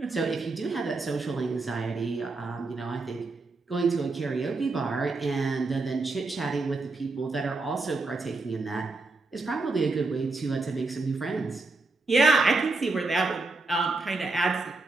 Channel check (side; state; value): left; quieter; 3.5 dB